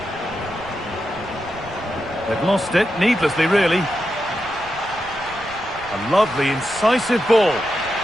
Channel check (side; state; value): right; noise; rumble, 18 dB below the sound